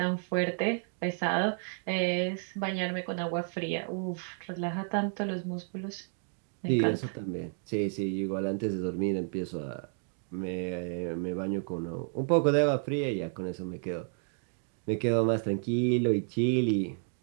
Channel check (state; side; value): silent; left; 55 dB below the other